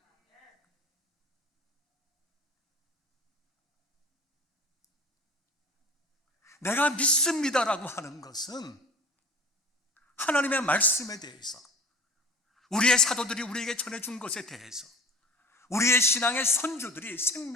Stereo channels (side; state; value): both; normal; correlation 0.41